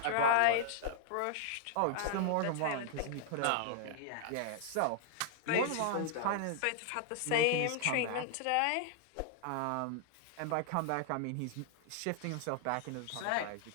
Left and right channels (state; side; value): different; both; correlation -0.01